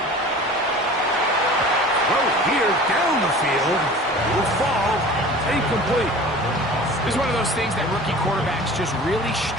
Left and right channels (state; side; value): normal; both; correlation 0.41